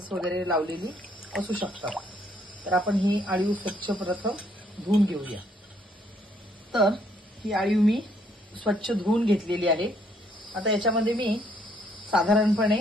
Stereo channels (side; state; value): both; normal; correlation 0.68